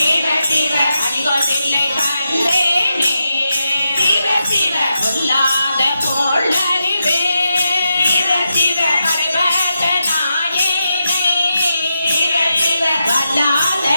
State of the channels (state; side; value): inverted; both; correlation -0.86